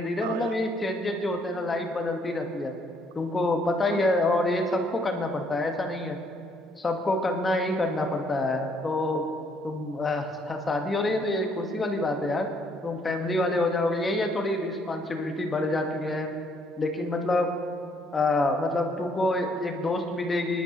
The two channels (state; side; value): normal; both; correlation 0.67